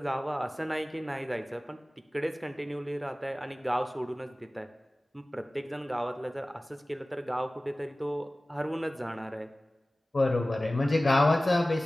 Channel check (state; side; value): normal; both; correlation 0.97